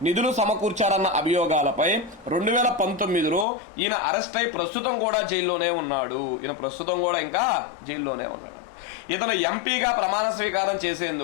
నిధులు సమకూర్చారన్న అభియోగాలపై 2019లో ఈయన అరెస్ట్ అయి ప్రస్తుతం కూడా జైల్లోనే ఉన్నాడు. ఈయన ప్రస్తుతం కూడా ఇంకా జైల్లోనే ఉన్నాడు. ఇతను ఎంపీగా ప్రమాణ స్వీకారం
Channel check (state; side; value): drops out; right; at 3.5 s